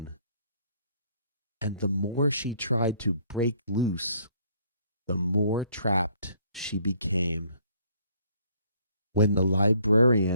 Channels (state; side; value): inverted; both; correlation -0.63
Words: And the more she tried to break loose, the more trapped she became. When the